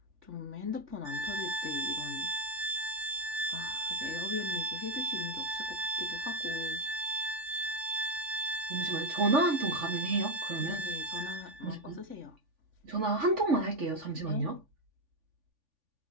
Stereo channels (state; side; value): late; left; 3.5 ms